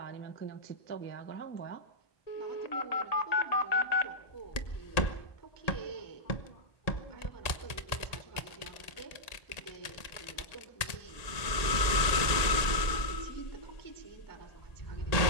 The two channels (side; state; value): right; late; 1.8 ms